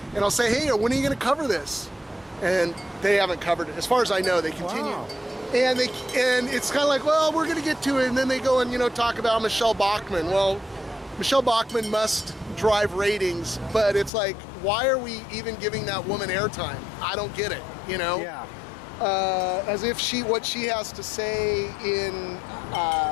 I'll say, hey, when are you going to cover this? And they haven't covered it. As far as I know, they continue. Wow. And it's kind of like, well, we're going to get to it, and then they go and, you know, talk about Michelle Bachmann. Well, Michelle Bachmann must drive ratings, but it's like, why are we even giving that woman airtime? I don't get it, you know? Yeah. As if what she has to say in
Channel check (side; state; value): right; drops out; at 14.1 s